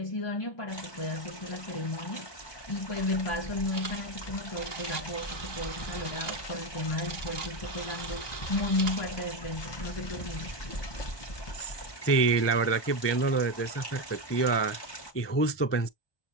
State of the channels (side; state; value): right; late; 1.2 ms